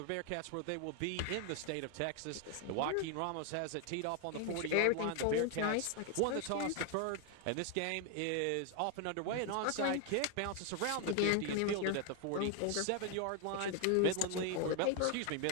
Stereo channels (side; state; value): both; different; correlation 0.01